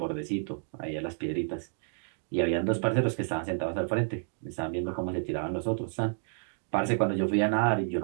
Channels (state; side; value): silent; left; digital silence